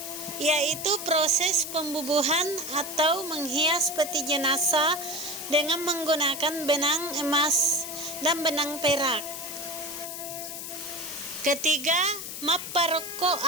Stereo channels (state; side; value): noise; left; hiss, 8 dB below the sound